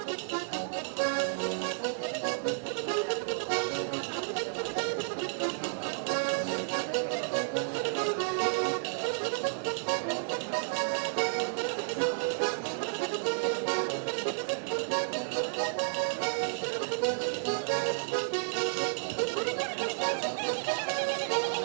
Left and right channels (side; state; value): left; silent; digital silence